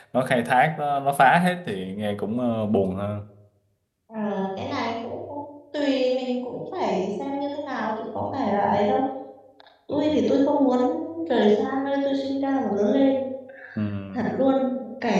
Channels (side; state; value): both; identical; correlation 1.00